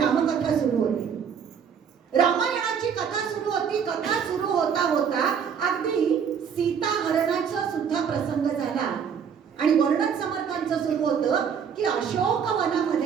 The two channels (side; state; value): left; quieter; 7.2 dB